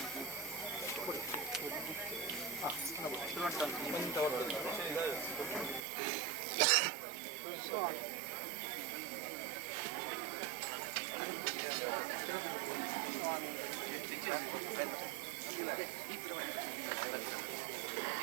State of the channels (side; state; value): left; drops out; at 5.8 s